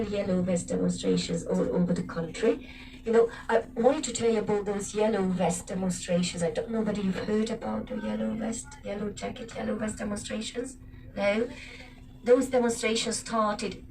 yellow vest demonstrations all over the country. You know, I wanted to tell you about those yellow vest demonstrations. I don't know whether you've heard about the yellow vest demonstrations. No? Those demonstrations started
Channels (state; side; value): identical; both; correlation 1.00